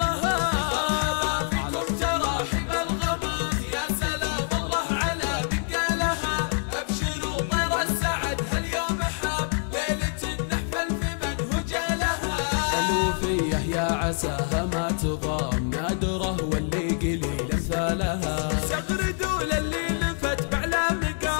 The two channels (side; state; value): right; silent; 61 dB below the other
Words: مرحبا فيكم تراحب الغمام، يا سلام الله على من قالها. ابشروا طير السعد هاليوم حاب، ليلة نحفل في منهج لها. الوفية يا عساها ما تضام، نادرة واللي قليل امثالها. سغردوا للي لفت بعلى